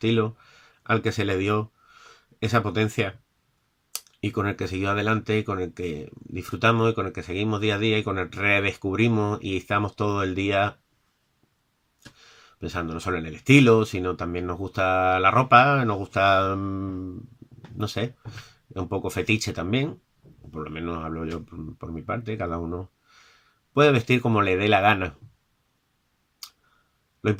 al que se le dio esa potencia y con el que siguió adelante, y con el que disfrutamos y con el que seguimos día a día y con el que redescubrimos y estamos todo el día pensando no solo en el estilo, sino también nos gusta la ropa, nos gusta, no sé, un poco fetiche también, por lo menos hablo yo por mi parte, cada uno puede vestir como le dé la gana. Lo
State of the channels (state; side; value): identical; both; correlation 1.00